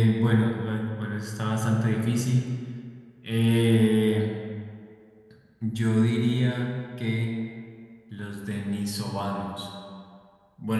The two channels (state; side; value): identical; both; correlation 1.00